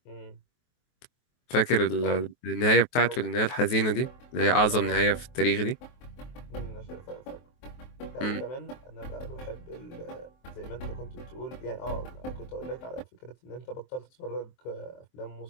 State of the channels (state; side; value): late; right; 23 ms